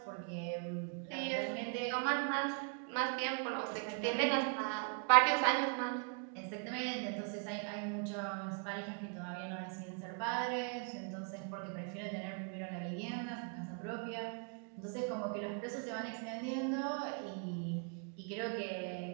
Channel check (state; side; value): quieter; left; 39.3 dB